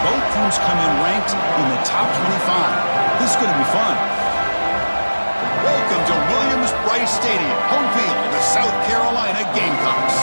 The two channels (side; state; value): both; inverted; correlation -1.00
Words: both teams come in ranked in the top 25. This is going to be fun. Welcome to Williams-Brice Stadium, home field of the South Carolina Gamecocks.